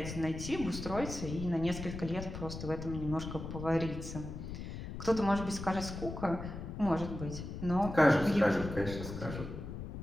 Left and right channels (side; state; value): left; noise; rumble, 8 dB below the sound